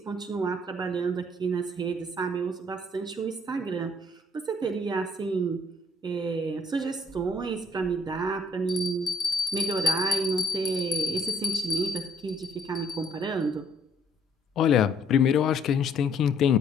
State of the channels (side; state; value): both; normal; correlation 0.65